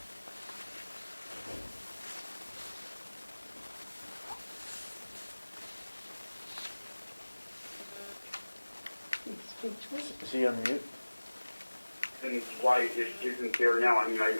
Is he on mute? And why it isn't there now. I mean,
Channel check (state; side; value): inverted; both; correlation -1.00